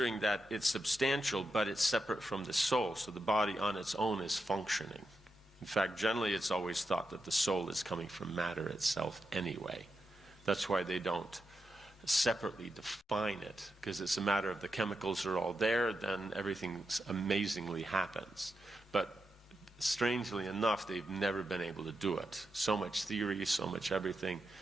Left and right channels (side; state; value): both; normal; correlation 0.87